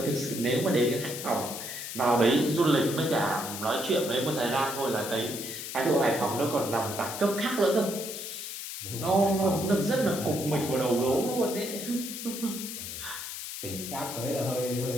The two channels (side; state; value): left; noise; hiss, 7 dB below the sound